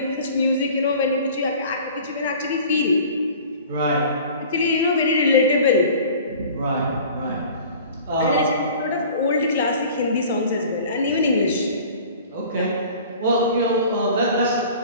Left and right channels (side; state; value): both; inverted; correlation -0.45